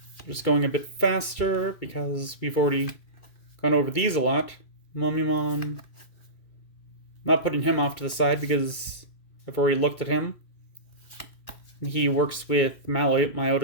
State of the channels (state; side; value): late; right; 2.2 ms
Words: Just going a bit faster because we've already gone over these a lot. Mummymon. Not putting him off to the side because I've already looked at him. He works with